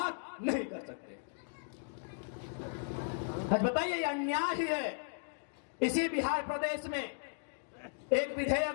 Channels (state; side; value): silent; right; digital silence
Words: नहीं कर सकते। आज बताइए, ये अन्याय ही है। इसी बिहार प्रदेश में एक